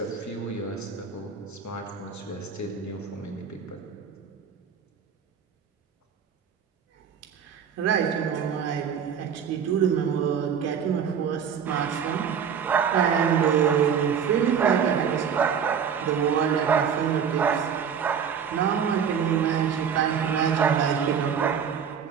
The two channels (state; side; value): quieter; left; 7.4 dB